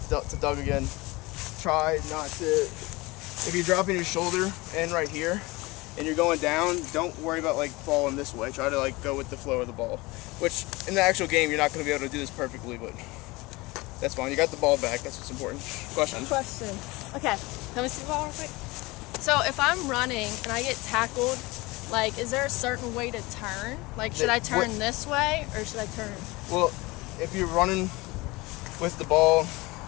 to Doug again, try not to, if you're dropping your shoulder in right here and you're going down, don't worry about like falling this way. Try to like go with the flow of the ball. Which, in the actual game, you're not going to be able to do this perfectly, but that's fine. You got the ball back. That's what's important. Question. Okay, let me see the ball real quick. So if I'm running and I get tackled, like, is there a certain way to turn? Like, should I turn this way or should I turn? Well, if you're running with the ball,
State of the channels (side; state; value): right; quieter; 22.6 dB